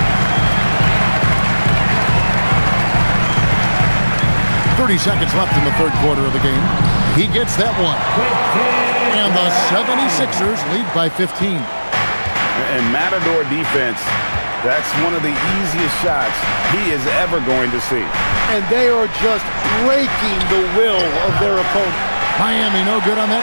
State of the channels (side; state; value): both; inverted; correlation -1.00